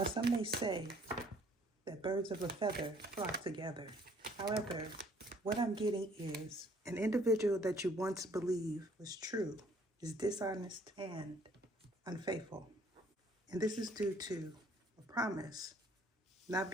some may say that birds of a feather flock together. However, what I'm getting is an individual that you once believed was true is dishonest and unfaithful. And this is due to a promise not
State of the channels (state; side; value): normal; both; correlation 0.61